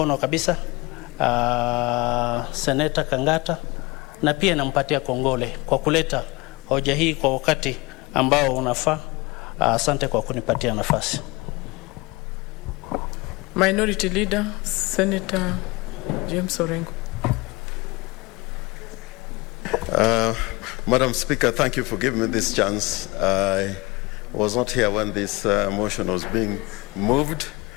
kabisa Senator Kangata, na pia nampatia kongole kwa kuleta hoja hii kwa wakati ambao unafaa. Asante kwa kunipatia nafasi. Minority Leader, Senator James Orengo. Madam Speaker, thank you for giving me this chance. I was not here when this motion was being moved,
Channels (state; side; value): quieter; right; 24.0 dB